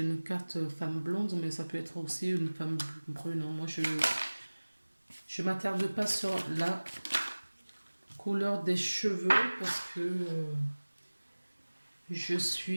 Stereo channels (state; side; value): inverted; both; correlation -1.00